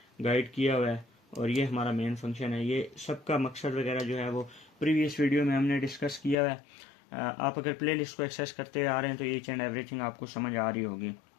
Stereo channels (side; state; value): right; drops out; at 6.4 s